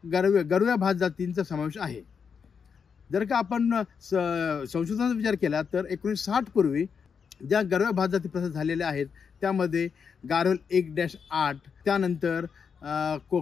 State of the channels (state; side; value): quieter; right; 6.3 dB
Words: गरव्या भात जातींचा समावेश आहे। जर का आपण संशोधनाचा विचार केला तर 1960 पूर्वी ज्या गरव्या भात जाती प्रसारित झालेल्या आहेत त्यामध्ये गारोल 1-8, त्यानंतर